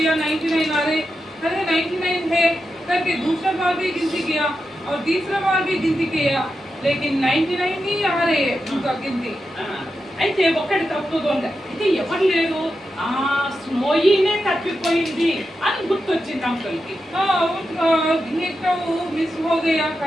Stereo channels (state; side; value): normal; both; correlation 0.88